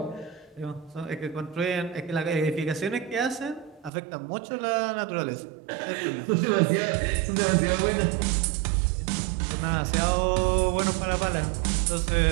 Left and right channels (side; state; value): left; drops out; at 3.9 s